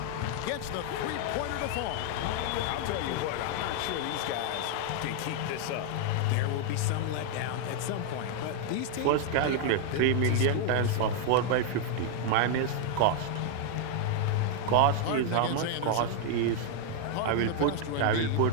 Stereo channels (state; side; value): different; both; correlation 0.00